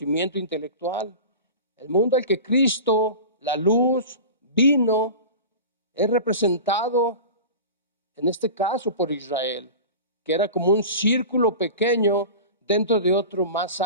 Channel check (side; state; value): both; inverted; correlation -0.33